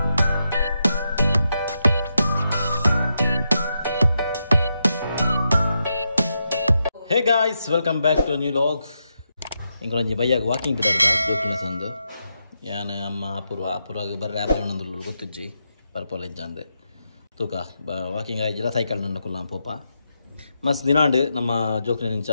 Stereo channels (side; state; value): both; inverted; correlation -0.84